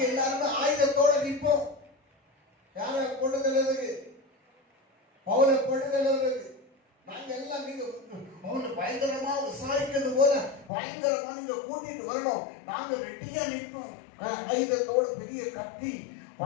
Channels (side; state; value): right; drops out; at 10.7 s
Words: எல்லாரும் ஆயுதத்தோட நிற்போம். யாரை கொண்டு செல்றதுக்கு? பவுலை கொண்டு செல்றதுக்கு. நாங்க எல்லாம் நீங்க அவனை பயங்கரமா விசாரிக்கிறது போல பயங்கரமா நீங்க கூட்டிட்டு வரணும். நாங்க ரெட்டியா நிற்போம். ஆயுதத்தோட பெரிய கத்தி,